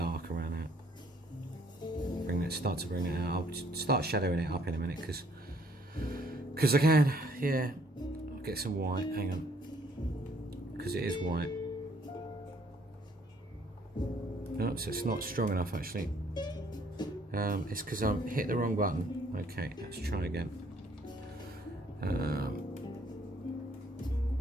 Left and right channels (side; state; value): both; normal; correlation 0.64